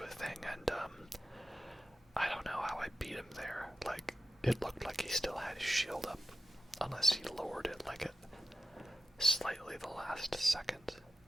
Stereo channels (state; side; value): normal; both; correlation 0.91